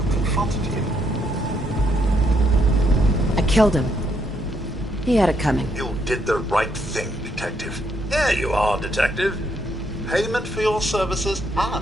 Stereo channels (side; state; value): both; normal; correlation 0.74